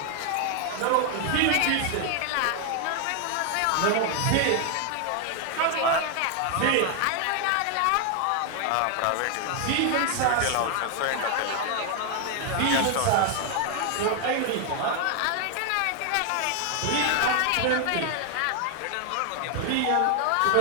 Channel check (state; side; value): different; both; correlation 0.00